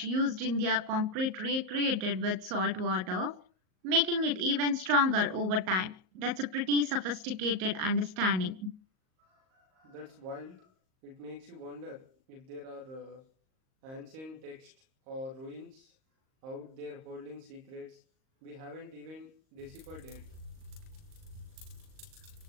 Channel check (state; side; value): late; left; 38 ms